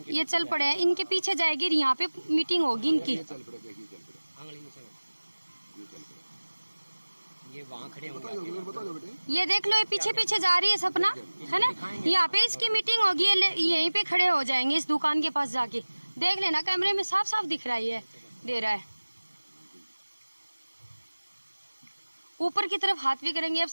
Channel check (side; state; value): both; inverted; correlation -1.00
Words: ये चल पड़े हैं, इनके पीछे जाएगी, यहाँ पे मीटिंग होगी इनकी। ये वहाँ खड़े होंगे, ये देख लो, ये पीछे पीछे जा रही है सपना, है ना, यहाँ पे इसकी मीटिंग होगी, यहीं पे खड़े हो जाएंगे इस दुकान के पास जाके। देख लेना, कैमरे में साफ साफ दिख रहा है, दे रहा है। ऊपर की तरफ हाथ भी करेंगे। अब